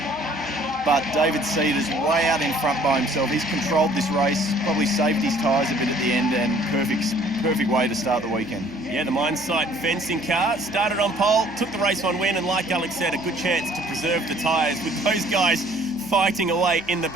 But David Cedars way out in front by himself. He's controlled this race, probably saved his tyres a bit at the end, and perfect way to start the weekend. Yeah, the mine site fencing car started on pole, took the race 1 win, and like Alex said, a good chance to preserve the tyres with those guys fighting away in the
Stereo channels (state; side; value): noise; right; hum, 21 dB below the sound